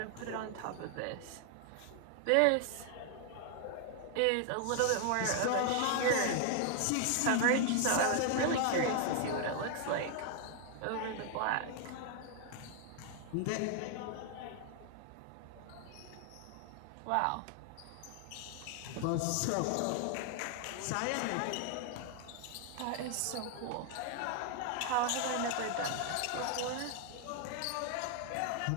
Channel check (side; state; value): both; different; correlation 0.00